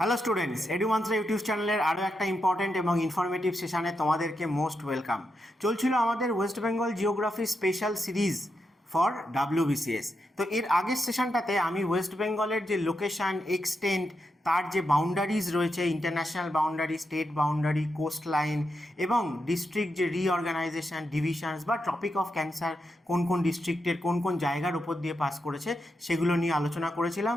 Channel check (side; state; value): both; normal; correlation 0.85